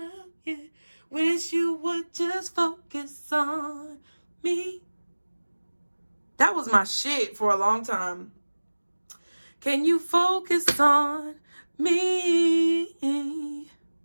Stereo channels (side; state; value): both; inverted; correlation -1.00